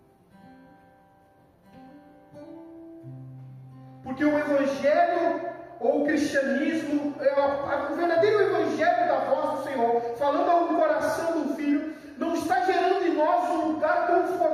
Porque o Evangelho ou o cristianismo, o verdadeiro Evangelho da voz do Senhor, falando ao coração do Filho, não está gerando em nós um lugar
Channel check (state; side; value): identical; both; correlation 1.00